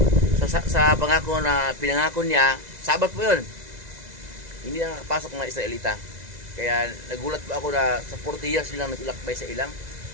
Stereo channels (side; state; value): left; late; 2.0 ms